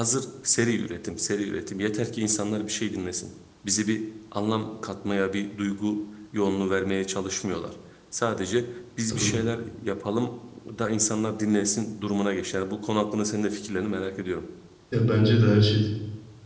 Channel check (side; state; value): both; identical; correlation 1.00